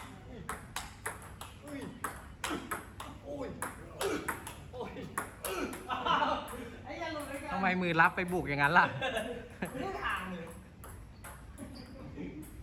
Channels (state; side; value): identical; both; correlation 1.00